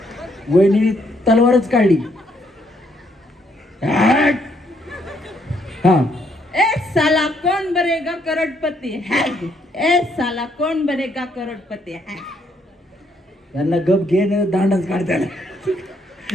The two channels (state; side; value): normal; both; correlation 0.71